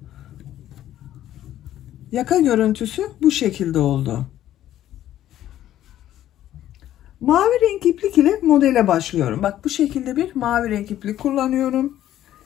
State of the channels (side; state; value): right; quieter; 12.5 dB